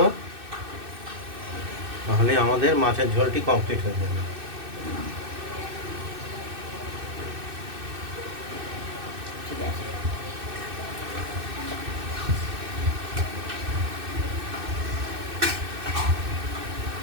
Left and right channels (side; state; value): left; late; 2.6 ms